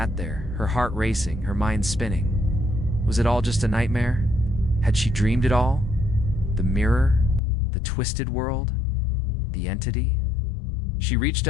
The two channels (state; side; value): drops out; right; at 7.4 s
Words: there, her heart racing, her mind spinning. Was it all just a nightmare? Had she dreamed it all? The mirror? The twisted world? The entity? She reached